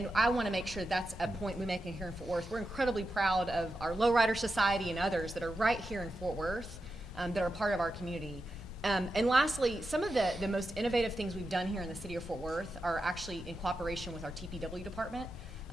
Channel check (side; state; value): both; normal; correlation 0.89